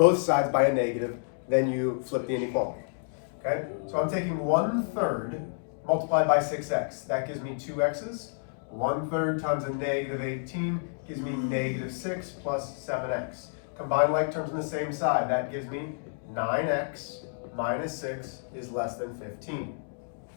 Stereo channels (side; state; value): right; silent; digital silence